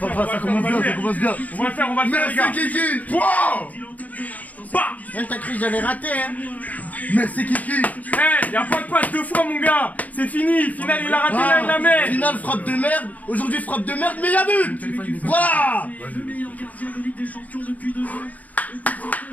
ça commence bien, ça commence bien! On va le faire, les gars! Merci, Kiki! Wow! T'as cru que j'allais rater, hein? Merci Kiki. Eh, y'a pas de passe deux fois, mon gars. C'est fini. Final, il a raté la mer. Finale frappe de merde. Aujourd'hui frappe de merde, mais y'a but. Voilà. Le meilleur gardien de Ligue des Champions depuis 2 ans. Et pour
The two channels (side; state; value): right; late; 0.076 ms